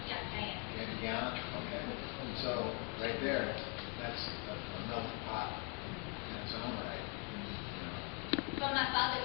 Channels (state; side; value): quieter; right; 36.3 dB